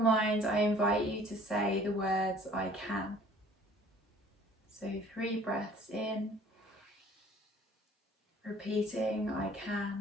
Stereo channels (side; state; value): both; normal; correlation 0.52